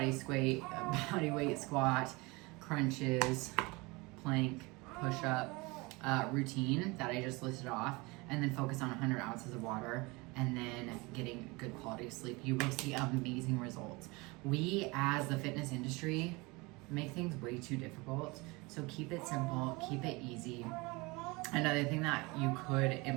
weight squat, crunches, plank, push-up routine that I just listed off, and then focus on 100 ounces of water, and then getting good quality sleep, you will see amazing results. We, as the fitness industry, make things way too difficult. So keep it simple, keep it easy. Another thing that you could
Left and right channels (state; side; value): quieter; left; 25.0 dB